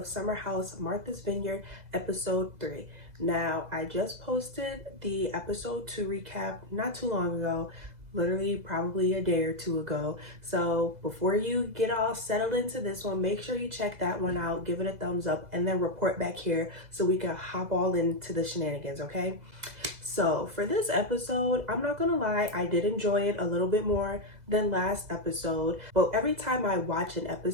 Summer House Martha's Vineyard episode 3. Now, I just posted the episode 2 recap not too long ago, literally probably a day or two ago. So before you get all settled into this one, make sure you check that one out, give it a thumbs up, and then report back here so we can hop all into the shenanigans, okay? So for this episode, I'm not gonna lie, I did enjoy it a little bit more than last episode, but every time I watch an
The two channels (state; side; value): late; left; 2.0 ms